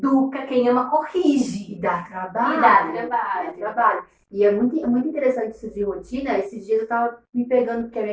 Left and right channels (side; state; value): both; identical; correlation 1.00